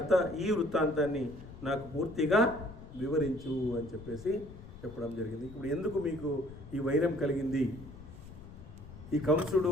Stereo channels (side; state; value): left; noise; rumble, 16 dB below the sound